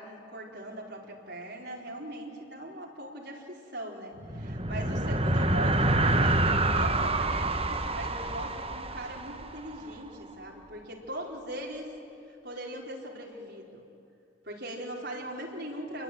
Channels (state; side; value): normal; both; correlation 0.30